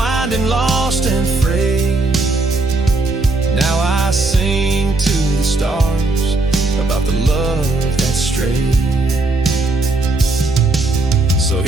lost and frayed. Now I sing to the stars about the love that strayed. So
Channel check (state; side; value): quieter; left; 3.2 dB